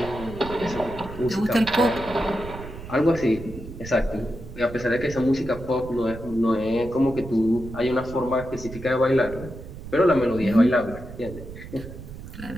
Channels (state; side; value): noise; right; rumble, 12 dB below the sound